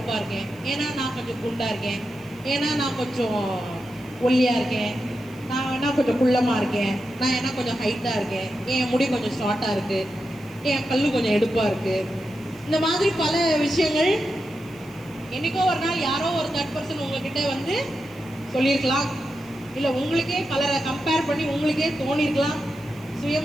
இருக்கேன், ஏன்னா நான் கொஞ்சம் குண்டா இருக்கேன், ஏன்னா நான் கொஞ்சம் ஒல்லியா இருக்கேன், நான் வேணா கொஞ்சம் குள்ளமா இருக்கேன், நான் என்ன கொஞ்சம் ஹைட்டா இருக்கேன், என் முடி கொஞ்சம் ஷார்ட்டா இருக்கு, என் கல்லு கொஞ்சம் எடுப்பா இருக்கு. இந்த மாதிரி பல விஷயங்கள் என்னைக்கோ ஒரு நாள் யாரோ ஒரு தேர்ட் பர்சன் உங்ககிட்ட வந்து சொல்லியிருக்கலாம். இல்லை உங்களுக்கே பலரை கம்பேர் பண்ணி உங்களுக்கே தோணிருக்கலாம்.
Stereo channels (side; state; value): right; noise; hiss, 26 dB below the sound